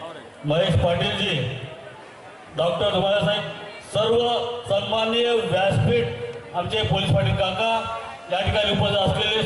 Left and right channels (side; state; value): both; identical; correlation 1.00